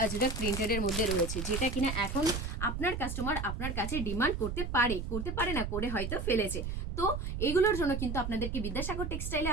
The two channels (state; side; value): noise; right; rumble, 4 dB below the sound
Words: আজরাক প্রিন্টেডের মধ্যে রয়েছে, যেটা কিনা এখন আপনার কাস্টমার আপনার কাছে ডিমান্ড করতে পারে না, করে হয়তো ফেলেছে। তো এগুলোর জন্য কিন্তু আপনাদেরকে বিদ্যাসাগর টেক্সটাইলে